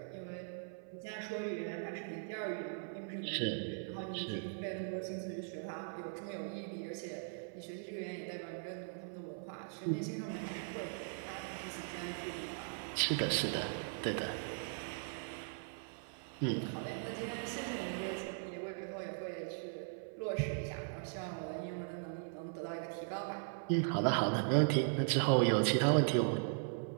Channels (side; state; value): left; silent; 51 dB below the other